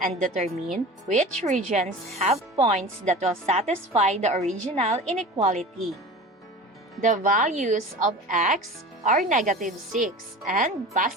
and determine which regions have points that will satisfy the original inequality. The values of x are negative 6 and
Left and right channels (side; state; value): both; normal; correlation 0.36